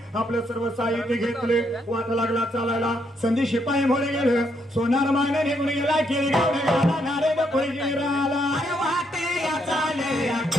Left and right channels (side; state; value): both; normal; correlation 0.75